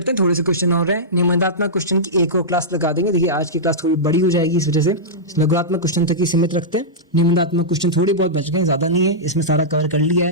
हैं, थोड़े से क्वेश्चन और हैं। निबंधात्मक क्वेश्चन की एक और क्लास लगा देंगे। देखिए आज की क्लास थोड़ी बड़ी हो जाएगी, इस वजह से लघुत्मक क्वेश्चन तक ही सीमित रखते हैं। निबंधात्मक क्वेश्चन थोड़ी बहुत बच गए, ज़्यादा नहीं है, इसमें सारा कवर कर लिया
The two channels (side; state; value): both; normal; correlation -0.12